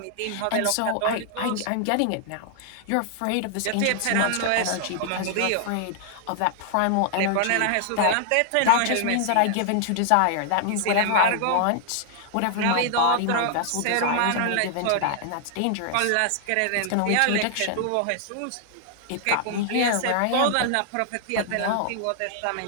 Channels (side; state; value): both; different; correlation -0.01